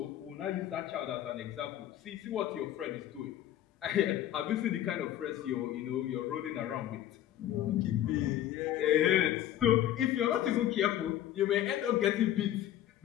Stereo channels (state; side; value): quieter; right; 12.2 dB